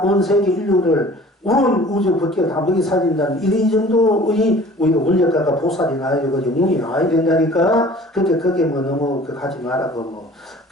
온 세계 인류를 온 우주 밖에 다 먹이 살린다는 이 정도의 우리가 원력가가 보살이 나야 되고 영웅이 나와야 된다니까. 그게 뭐 너무 하지 말라고 뭐.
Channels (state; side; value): normal; both; correlation 0.47